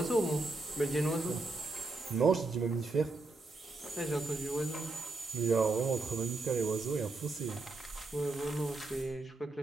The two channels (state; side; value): quieter; left; 3.2 dB